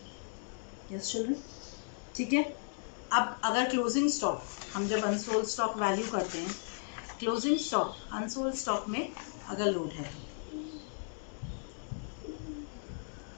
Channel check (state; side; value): silent; right; digital silence